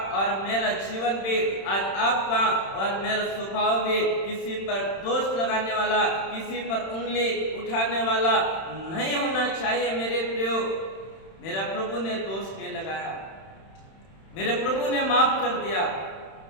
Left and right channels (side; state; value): right; late; 31 ms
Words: और मेरा जीवन भी, आज आपका और मेरा स्वभाव भी किसी पर दोष लगाने वाला, किसी पर उंगली उठाने वाला नहीं होना चाहिए। मेरे प्रियो, मेरा प्रभु ने दोष नहीं लगाया, मेरे प्रभु ने माफ कर दिया,